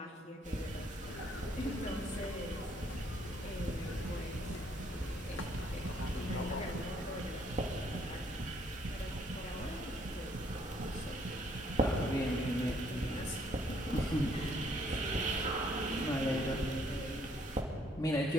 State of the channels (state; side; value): normal; both; correlation 0.66